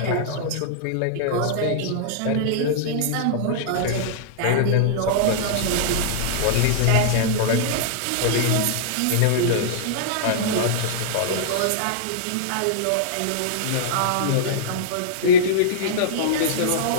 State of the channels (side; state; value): both; different; correlation -0.02